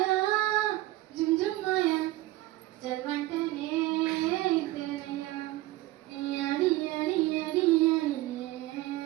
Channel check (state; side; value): quieter; left; 17.5 dB